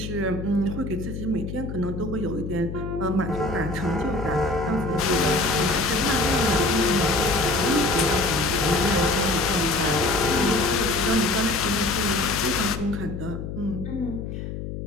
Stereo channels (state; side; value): noise; left; hum, 7 dB below the sound